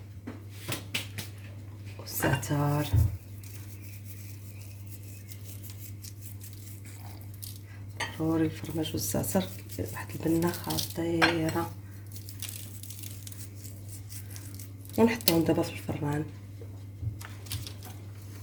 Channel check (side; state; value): both; identical; correlation 1.00